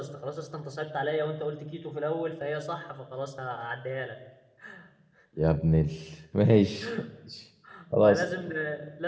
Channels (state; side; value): identical; both; correlation 1.00